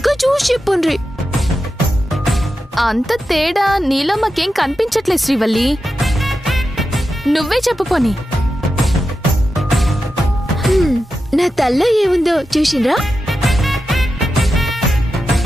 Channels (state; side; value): normal; both; correlation 0.90